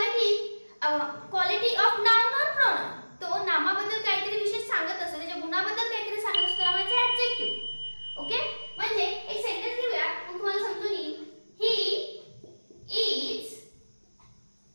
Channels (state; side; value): inverted; both; correlation -1.00